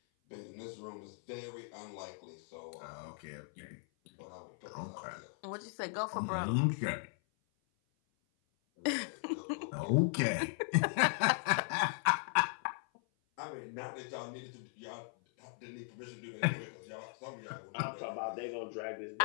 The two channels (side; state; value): right; silent; 52 dB below the other